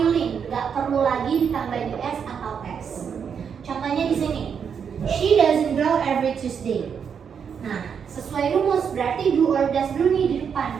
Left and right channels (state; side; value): quieter; left; 7.1 dB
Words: gak perlu lagi ditambahin s atau s. Contohnya di sini, she doesn't draw every Tuesday. Nah, sesuai rumus berarti do or does dulu nih di depan.